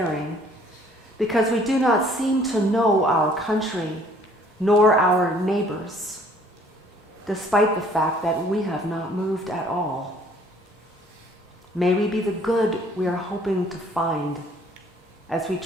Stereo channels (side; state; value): both; normal; correlation 0.59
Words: because we do not seem to know our country nor our neighbors, despite the fact that we have not moved at all. May we be the good we are hoping to find as we